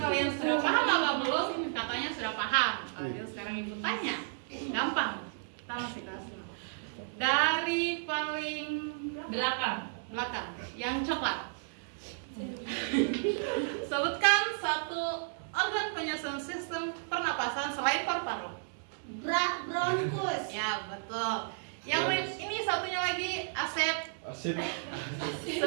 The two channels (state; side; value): silent; left; digital silence